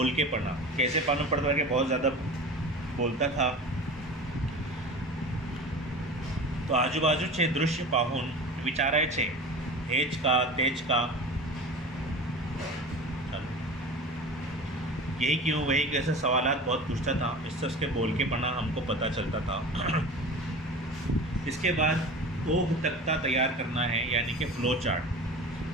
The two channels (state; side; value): normal; both; correlation 0.35